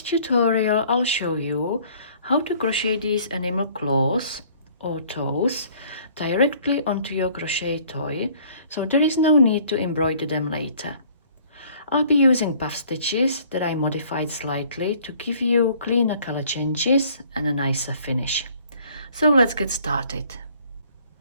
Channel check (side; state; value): both; inverted; correlation -0.56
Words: tutorial I'll show you how to crochet these animal claws or toes directly onto your crochet toy, so there is no need to embroider them later. I'll be using puff stitches that I modified slightly to give you cleaner color changes and a nicer finish. So let's get started.